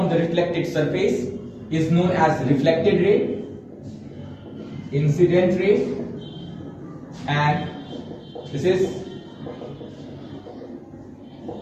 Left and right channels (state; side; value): identical; both; correlation 1.00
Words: the reflected surface is known as reflected ray, incident ray, and this is